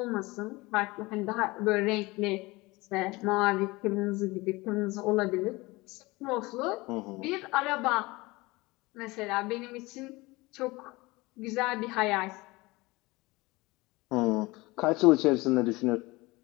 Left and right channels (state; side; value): quieter; right; 22.3 dB